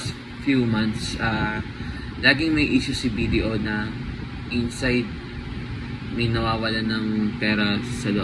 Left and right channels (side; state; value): both; identical; correlation 1.00